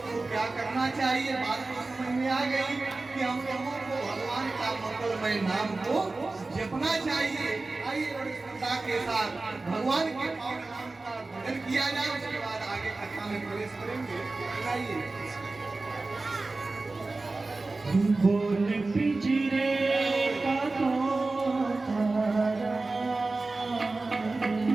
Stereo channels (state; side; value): quieter; left; 3.4 dB